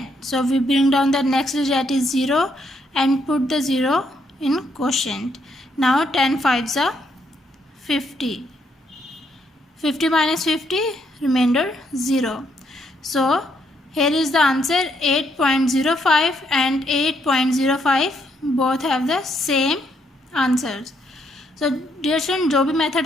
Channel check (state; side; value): normal; both; correlation 0.74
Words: So we bring down the next digit, that is 0, and put the 0 in quotient. Now 10 5s are 50. 50 minus 50, remainder 0. So here is the answer, 8.05 and 8.05 both have the same answers. So dear student, जो भी method